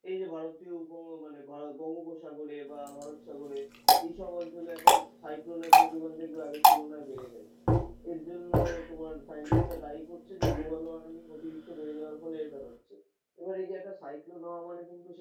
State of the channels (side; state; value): both; identical; correlation 1.00